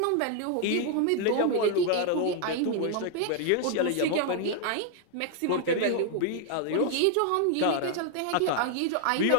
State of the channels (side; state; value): both; different; correlation 0.00